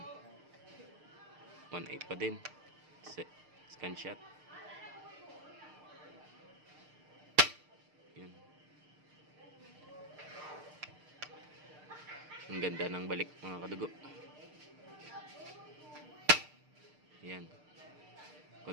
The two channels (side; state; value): left; late; 6.6 ms